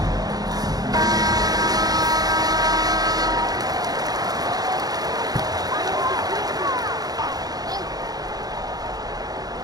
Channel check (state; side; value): late; left; 0.19 ms